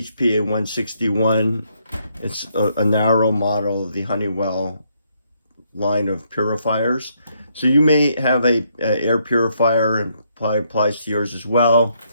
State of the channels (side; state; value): both; inverted; correlation -0.73